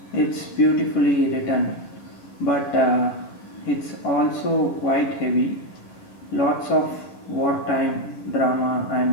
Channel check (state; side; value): late; right; 11 ms